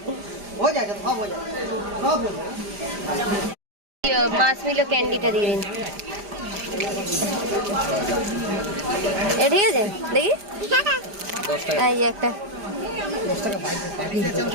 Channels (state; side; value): late; left; 5.0 ms